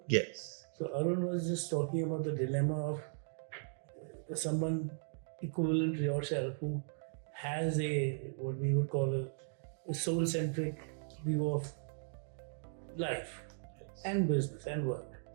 Yes. So Arun was just talking about the dilemma of someone equivalent to yourself who has what we would call a soul-centric view of life and business and work,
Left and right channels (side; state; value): left; silent; digital silence